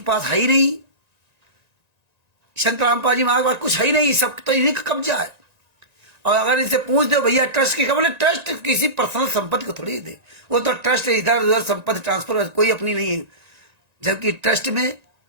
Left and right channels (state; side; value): late; left; 1.9 ms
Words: पास है ही नहीं, संतराम पाजी महाराज के पास कुछ है ही नहीं, सब तो इन्हीं का कब्जा है। और अगर इनसे पूछ दो भैया ट्रस्ट की, बोले ट्रस्ट किसी पर्सनल संपत्ति को थोड़ी दे, वो तो ट्रस्ट इधर उधर संपत्ति ट्रांसफर, कोई अपनी नहीं है। जबकि ट्रस्ट में